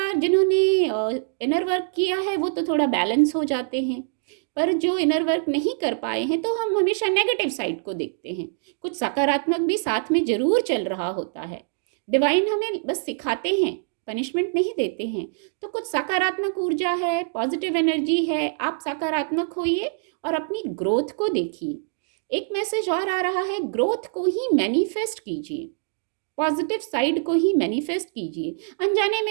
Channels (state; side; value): silent; left; digital silence